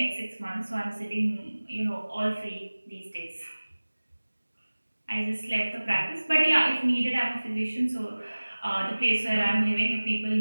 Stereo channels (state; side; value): inverted; both; correlation -1.00